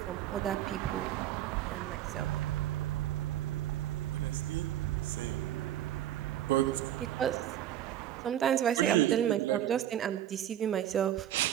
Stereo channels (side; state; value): left; quieter; 11.7 dB